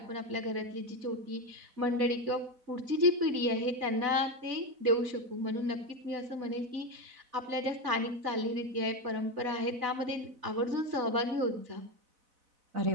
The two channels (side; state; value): left; late; 4.0 ms